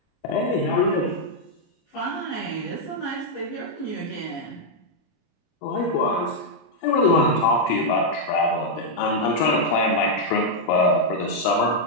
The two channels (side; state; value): right; late; 26 ms